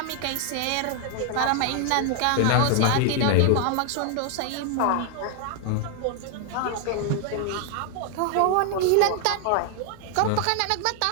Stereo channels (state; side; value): different; both; correlation 0.00